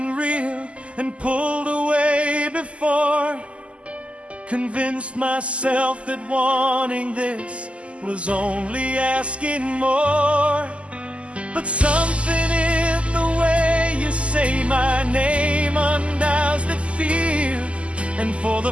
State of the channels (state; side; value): late; left; 0.058 ms